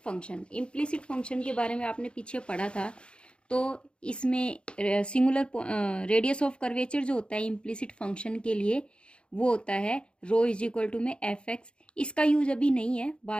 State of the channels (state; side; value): late; right; 0.055 ms